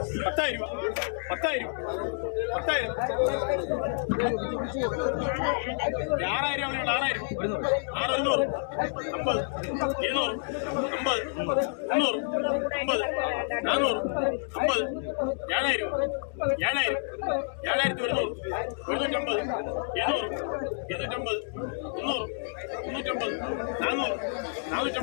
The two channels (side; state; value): right; silent; digital silence